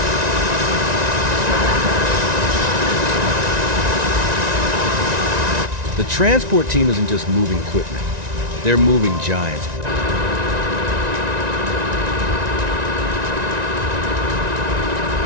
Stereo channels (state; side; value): late; left; 1.9 ms